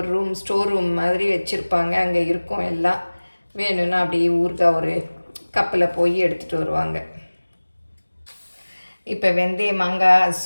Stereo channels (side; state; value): both; inverted; correlation -1.00